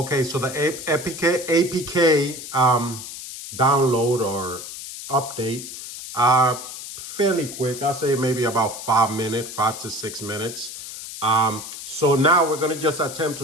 so the APK download or update, fairly quick. I'll say maybe about 5 minutes, 5 to 6 minutes. So now we're gonna just attempt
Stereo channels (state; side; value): noise; left; hiss, 10 dB below the sound